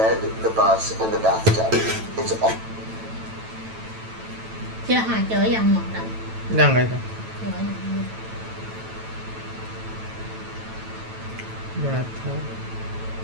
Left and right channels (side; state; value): left; late; 9.0 ms